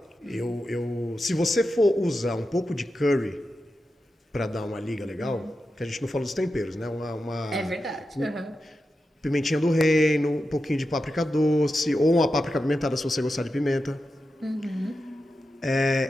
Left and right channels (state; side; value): normal; both; correlation 0.90